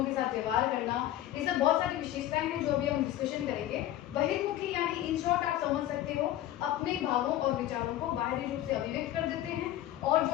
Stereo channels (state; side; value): quieter; right; 13.4 dB